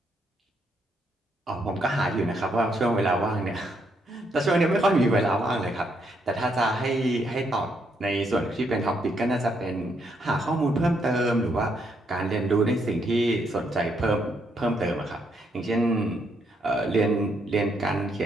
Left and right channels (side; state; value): both; normal; correlation 0.75